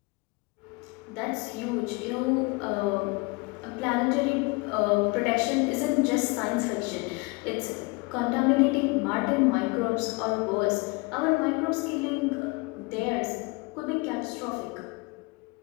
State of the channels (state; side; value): quieter; right; 27.2 dB